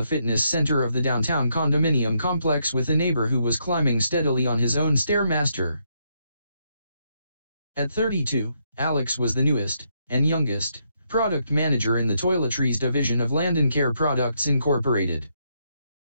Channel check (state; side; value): inverted; both; correlation -0.77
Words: fitness center of the downtown condominium complex with a neighbor who was climbing steadily on his own Stairmaster. At 32, Alex was the newest, and youngest, product manager in the toiletries division of Landon Care Products Incorporated,